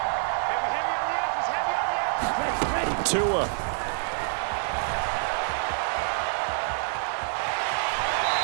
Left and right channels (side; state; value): left; silent; digital silence